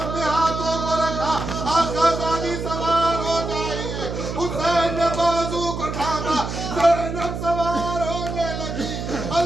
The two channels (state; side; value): noise; right; hum, 5 dB below the sound